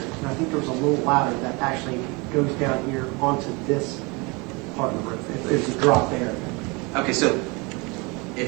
I think there was a little ladder that actually goes down here onto this part of the roof. There's a drop there. Okay, so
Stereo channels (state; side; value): quieter; left; 27.7 dB